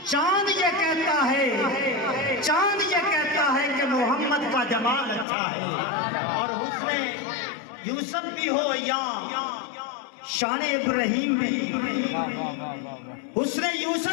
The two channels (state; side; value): drops out; right; at 5.2 s